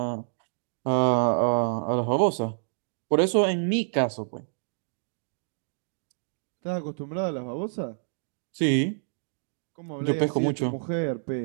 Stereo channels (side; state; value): left; silent; digital silence